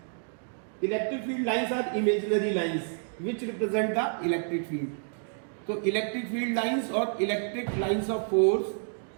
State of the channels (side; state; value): left; silent; digital silence